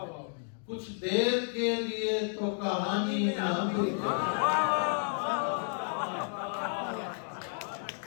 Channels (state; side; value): silent; right; 57 dB below the other